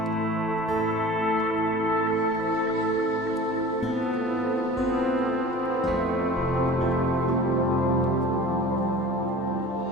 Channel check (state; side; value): normal; both; correlation 0.41